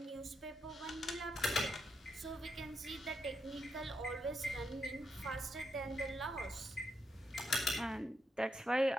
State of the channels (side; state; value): both; normal; correlation 0.81